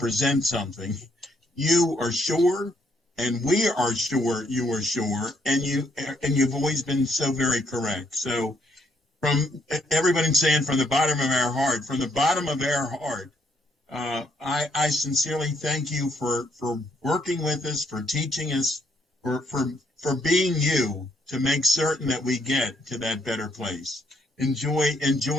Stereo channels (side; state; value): both; normal; correlation 0.71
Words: something, you are sure, and we are sure you are sure, and you've always been so very correct. So from everybody saying from the bottom of our heart, I sincerely thank you for working with us, for teaching us, for being you to make certain that we get to that better place. Enjoy